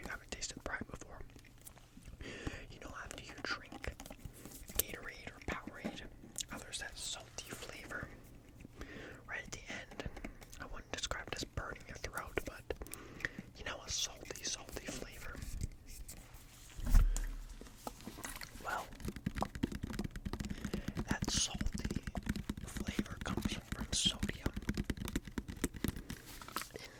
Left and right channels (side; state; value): both; identical; correlation 1.00